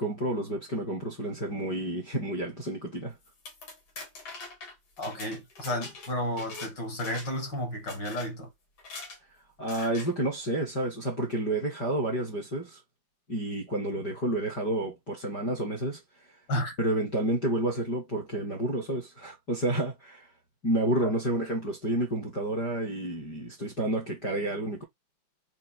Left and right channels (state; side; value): late; right; 5.1 ms